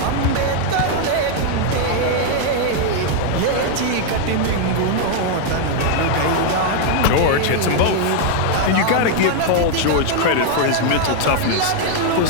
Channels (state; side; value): different; both; correlation 0.00